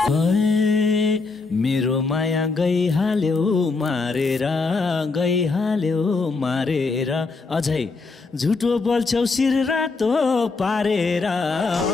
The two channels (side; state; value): right; quieter; 4.0 dB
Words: मेरो माया गइहाल्यो मारेर, गइहाल्यो मारेर, अझै झुटो बोल्छौ शिर रातो पारेर।